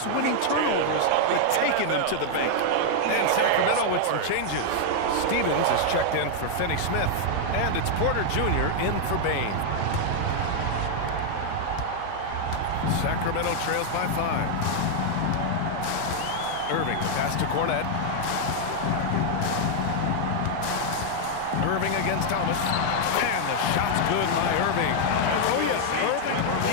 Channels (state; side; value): different; both; correlation 0.00